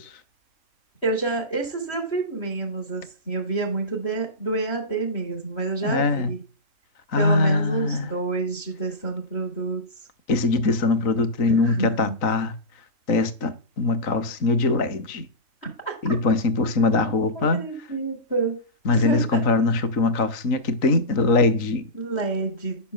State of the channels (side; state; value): right; late; 3.9 ms